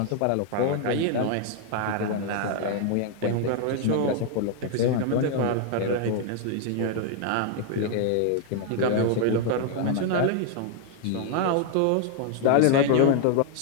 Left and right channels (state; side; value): different; both; correlation 0.00